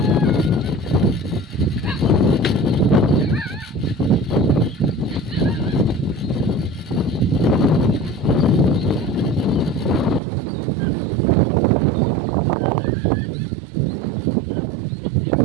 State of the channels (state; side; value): drops out; left; at 10.2 s